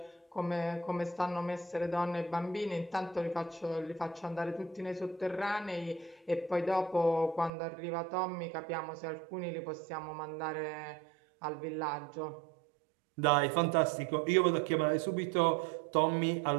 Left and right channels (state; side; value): drops out; left; at 7.5 s